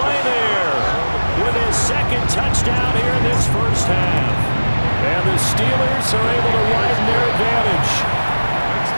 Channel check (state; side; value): inverted; both; correlation -1.00